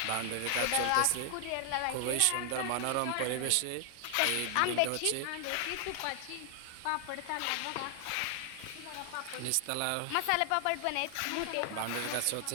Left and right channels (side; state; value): both; different; correlation 0.00